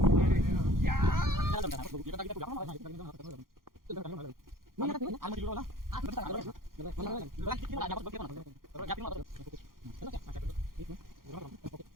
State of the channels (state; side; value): late; left; 0.91 ms